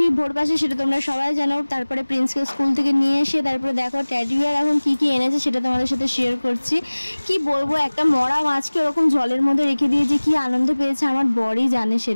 ভোর 5-এ সেটা তোমরা সবাই জানো। তারপরে প্রিন্সকে স্কুল থেকে নিয়ে এসে তারপরে দেখো টেডি বিয়ার এখন কী কী এনেছে সেটা তোমাদের সাথে শেয়ার করছি। কি বলবো, একটা মরা মাছকে ওরকম জলের মধ্যে রেখে দিয়ে যে কি আনন্দ পেয়েছে আমার বরই জানে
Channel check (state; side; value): inverted; both; correlation -1.00